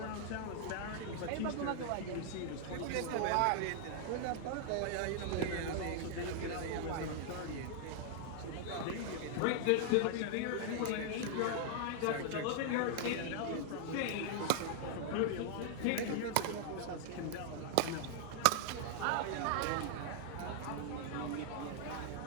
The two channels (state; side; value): different; both; correlation 0.00